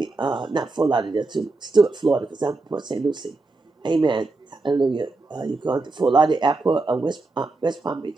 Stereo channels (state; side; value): quieter; left; 3.4 dB